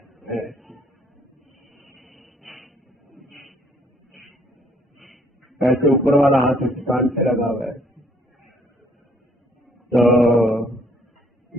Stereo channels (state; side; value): normal; both; correlation 0.62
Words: ऐसे ऊपर वाला हाथ इस कान से लगा हुआ है, तो